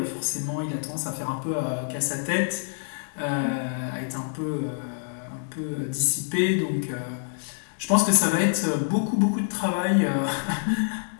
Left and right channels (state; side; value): silent; right; digital silence